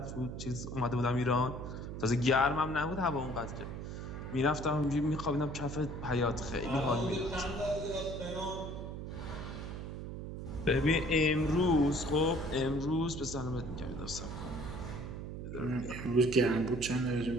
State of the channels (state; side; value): noise; right; hum, 7 dB below the sound